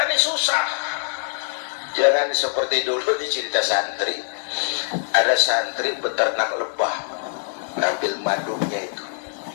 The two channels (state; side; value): silent; right; digital silence